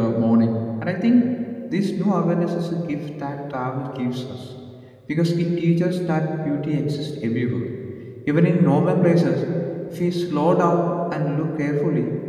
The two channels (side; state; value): both; identical; correlation 1.00